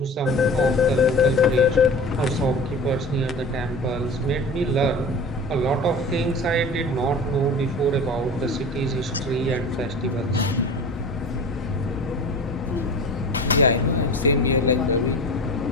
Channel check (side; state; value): both; normal; correlation 0.35